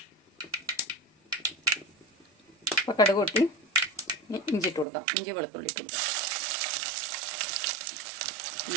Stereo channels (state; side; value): drops out; left; at 4.9 s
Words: അപ്പോൾ കടുക് പൊട്ടി ഇഞ്ചി ഇട്ട് കൊടുക്കാം. ഇഞ്ചി വെളുത്തുള്ളി ഇട്ട് കൊടുക്കാം.